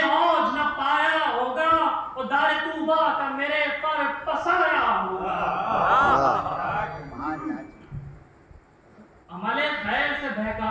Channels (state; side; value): identical; both; correlation 1.00